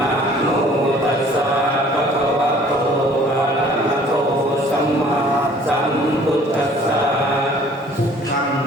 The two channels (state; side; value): normal; both; correlation 0.54